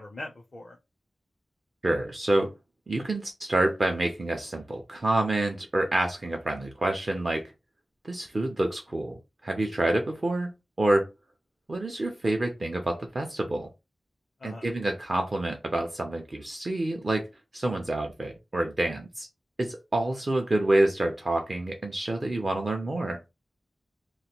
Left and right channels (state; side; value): normal; both; correlation 0.95